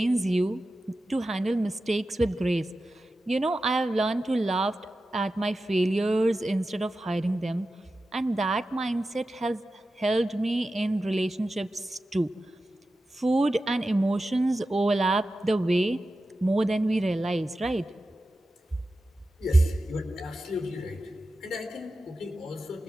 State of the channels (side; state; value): both; normal; correlation 0.93